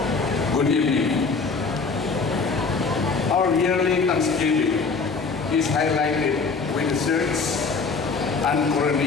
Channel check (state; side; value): quieter; right; 4.6 dB